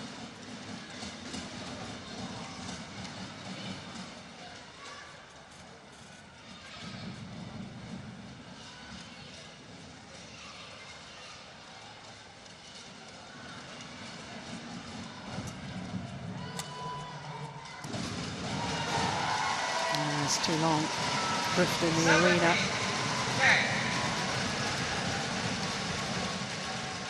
It's too long, drift in the arena.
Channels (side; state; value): both; identical; correlation 1.00